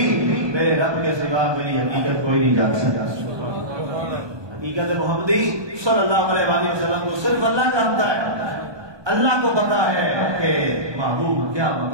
میرے رب کے سوا میری حقیقت کوئی نہیں جان سکتا۔ حقیقت محمدی صلی اللہ علیہ وآلہ وسلم کو صرف اللہ جانتا ہے۔ اللہ کو پتا ہے کہ محبوب کیا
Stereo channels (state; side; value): late; left; 1.2 ms